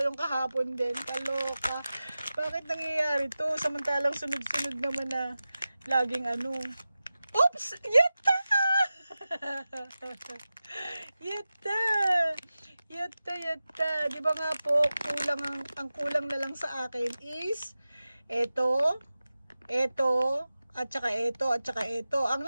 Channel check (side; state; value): both; inverted; correlation -0.95